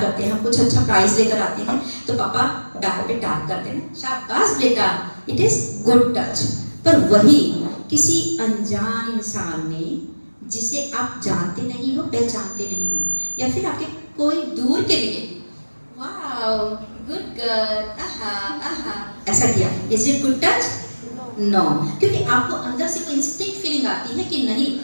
हैं, हम कुछ अच्छा प्राइज लेकर आते हैं तो पापा बैक पे टैप करते हैं, शाबाश बेटा, इट इज गुड टच। पर वही किसी अनजान इंसान ने, जिसे आप जानते नहीं हो, पहचानते नहीं हो, या फिर आपके कोई दूर के लिए, वाओ गुड गर्ल, आहा आहा, ऐसा किया, is it good touch? No, क्योंकि आपको अंदर से कोई इंस्टिंक्ट फीलिंग आती है कि नहीं,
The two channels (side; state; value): both; inverted; correlation -1.00